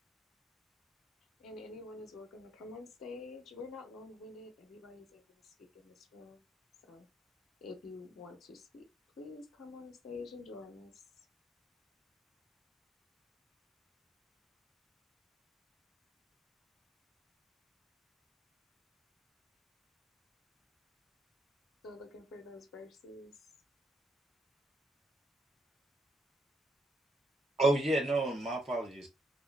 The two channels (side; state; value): both; normal; correlation 0.76